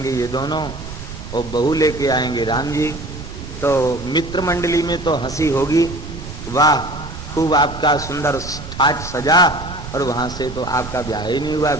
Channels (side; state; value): right; noise; rumble, 11 dB below the sound